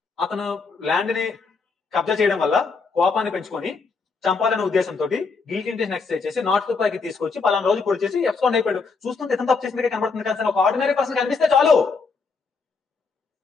అతను ల్యాండ్ ని కబ్జా చేయడం వల్ల కోపాన్ని పెంచుకొని చంపాలనే ఉద్దేశంతో గిల్టీ ఇంటెన్షన్ ఎక్సర్సైజ్ చేసి నాట్ టు పైకి తీసుకొచ్చి పలానా రోజు పొడి చేసి ఎబ్స్కాండ్ అయిపోయాడు. చూస్తుంటే ఇతను తప్పు చేసినట్టుగా కనబడుతుంది కానీ ఒక ఆర్డినరీ పర్సన్ కనిపిస్తే చాలు,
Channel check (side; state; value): right; quieter; 4.7 dB